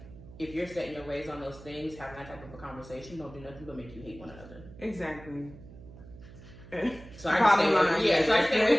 if you're setting your ways on those things, having that type of a conversation don't do nothing but make you hate one another. Exactly. So I stay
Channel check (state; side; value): noise; right; hum, 18 dB below the sound